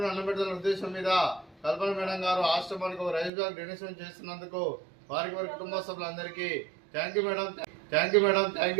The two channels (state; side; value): drops out; left; at 3.3 s